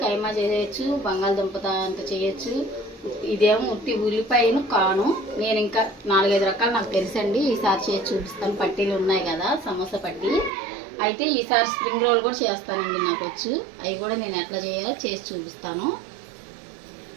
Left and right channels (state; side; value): drops out; left; at 10.5 s